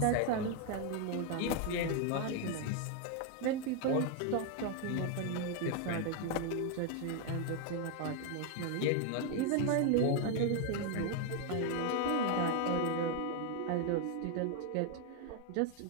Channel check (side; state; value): both; different; correlation 0.01